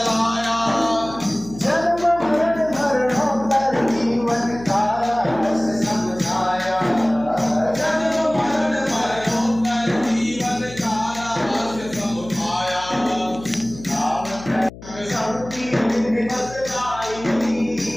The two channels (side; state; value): left; noise; hum, 16 dB below the sound